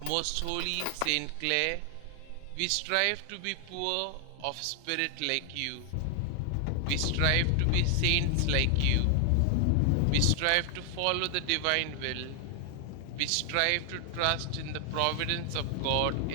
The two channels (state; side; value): different; both; correlation 0.00